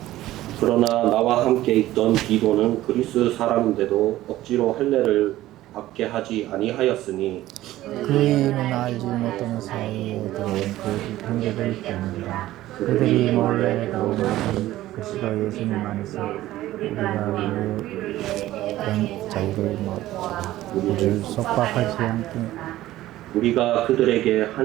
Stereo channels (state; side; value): quieter; left; 15.3 dB